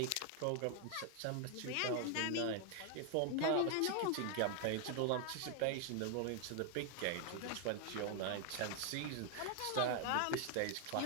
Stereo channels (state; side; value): different; both; correlation 0.00